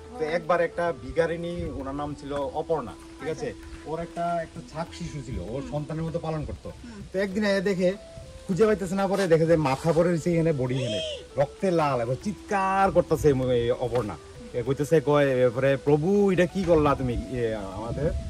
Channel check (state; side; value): identical; both; correlation 1.00